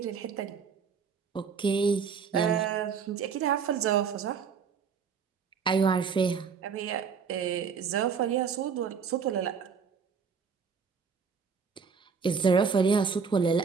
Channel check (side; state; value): left; quieter; 6.0 dB